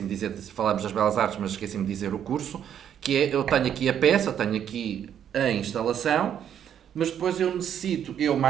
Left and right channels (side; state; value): left; quieter; 9.4 dB